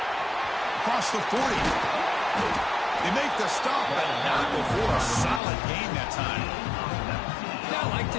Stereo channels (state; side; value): drops out; right; at 5.4 s